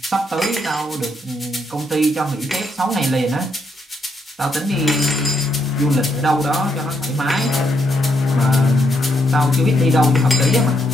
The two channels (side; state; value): both; normal; correlation 0.77